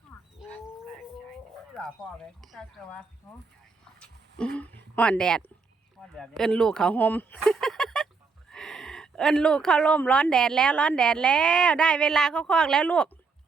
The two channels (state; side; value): quieter; left; 4.6 dB